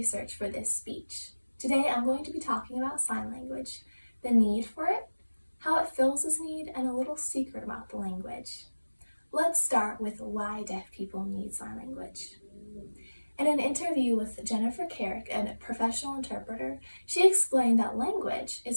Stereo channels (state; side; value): inverted; both; correlation -1.00